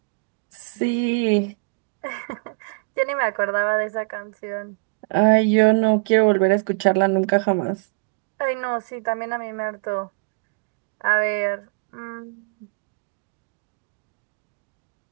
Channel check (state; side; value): quieter; left; 33.2 dB